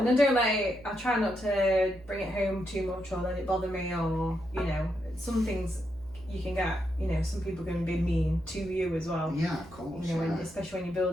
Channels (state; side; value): noise; right; hum, 21 dB below the sound